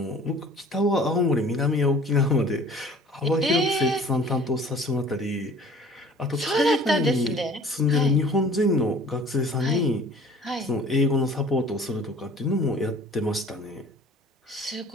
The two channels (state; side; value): normal; both; correlation 0.49